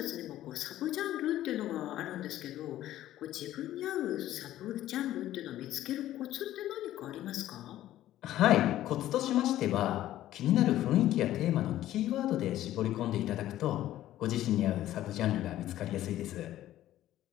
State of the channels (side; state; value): right; quieter; 13.6 dB